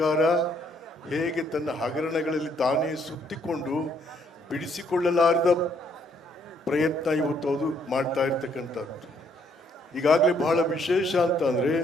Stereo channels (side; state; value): both; normal; correlation 0.68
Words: ಹೇಗೆ ತನ್ನ ಹಗರಣಗಳಲ್ಲಿ ತಾನೇ ಸುತ್ತಿಕೊಂಡು ಬಿಡಿಸಿಕೊಳ್ಳಲಾರದ ಪ್ರಯತ್ನ ಇವತ್ತು ಅದು ಮಾಡ್ತಾ ಇರ್ತಕ್ಕಂಥದ್ದು. ಈಗಾಗಲೇ ಬಹಳ ವಿಶೇಷ ಅಂತ ಅಂದರೆ